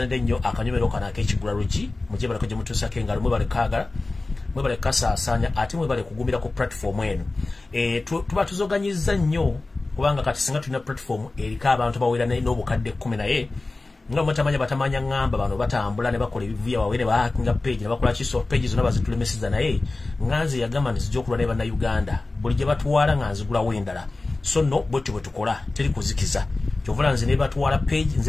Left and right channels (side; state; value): right; quieter; 3.2 dB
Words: ennyo akanyomero kano ak'ekigula luggi mujje baleko gye mutuusako engalo mwebale kaagala mwebale kasaasaanya ate mwebale kugumira ku platform eno tuba tuzoganyizza nnyo kubanga kati singa tulina platform eriko abantu bawera n'obukadde 10 naye nga mutamanya batamanya ngamba bano batambula ne bakola ebivuya wawe ne bahakinga page ne bakola kiso page zonna bazitulemesiza naye nganze yagamba nti zijja okulwa ne bannayuganda buli gye batuwala nganzigula wendala so no bwetyo bwe tukola teri kuzikiza kyovula nze ne batuwala page